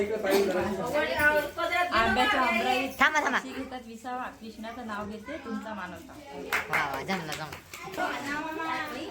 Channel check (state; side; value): identical; both; correlation 1.00